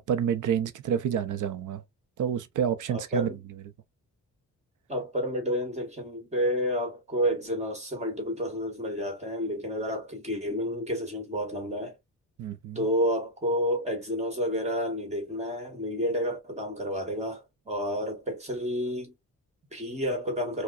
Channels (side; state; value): both; normal; correlation -0.08